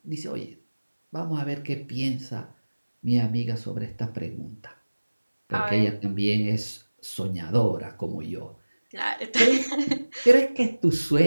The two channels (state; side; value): inverted; both; correlation -1.00